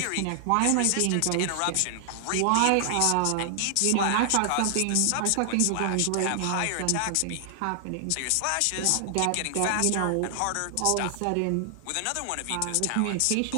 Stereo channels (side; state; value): both; different; correlation 0.00